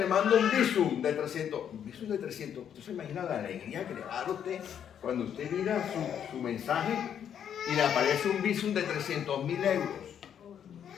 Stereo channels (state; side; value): quieter; right; 8.9 dB